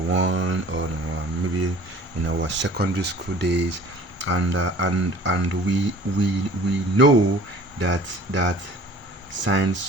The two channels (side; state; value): both; normal; correlation 0.48